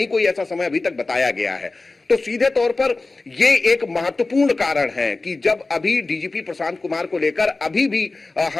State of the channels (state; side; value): quieter; right; 3.4 dB